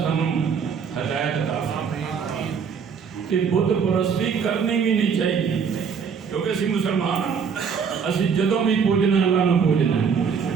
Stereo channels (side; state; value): left; quieter; 6.4 dB